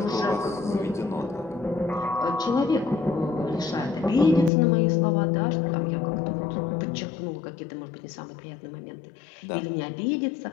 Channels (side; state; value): right; drops out; at 4.5 s